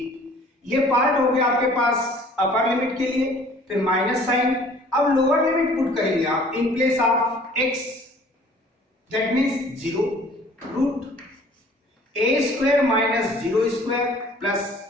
ये part हो गया आपके पास upper limit के लिए, फिर minus sine. अब लोअर लिमिट पुट करेंगे आप in place of x, that means 0 root a square minus 0 square plus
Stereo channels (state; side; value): normal; both; correlation 0.52